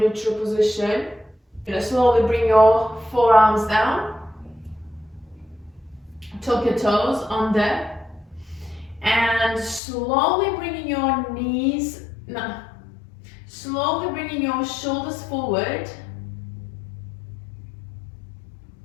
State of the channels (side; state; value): right; drops out; at 9.8 s